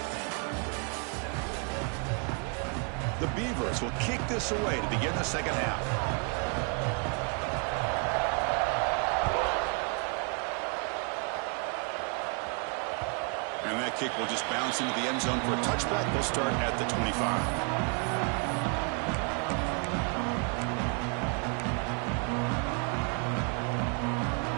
The Beavers will kick this away to begin the second half. And that kick will just bounce into the end zone for a touchback. They'll start at the 25.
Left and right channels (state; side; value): quieter; left; 38.1 dB